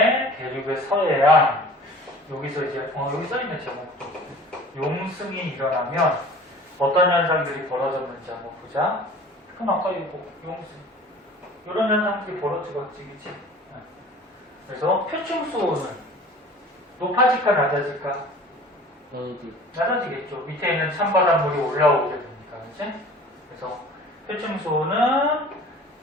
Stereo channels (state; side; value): normal; both; correlation 0.45